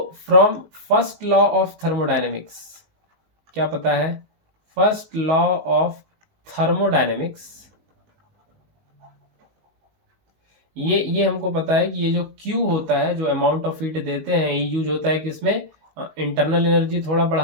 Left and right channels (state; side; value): late; left; 19 ms